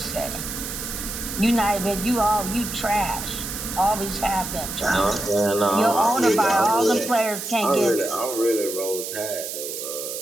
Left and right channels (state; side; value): noise; right; hiss, 7 dB below the sound